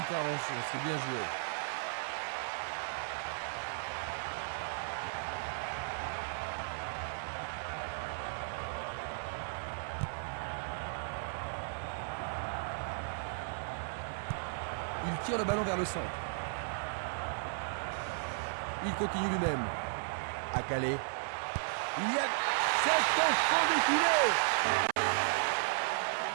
c'est bien joué. Il tire le ballon vers le centre. Il continue lui-même. À Calais. Il y a... C'est au fond des filets.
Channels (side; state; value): left; silent; 54 dB below the other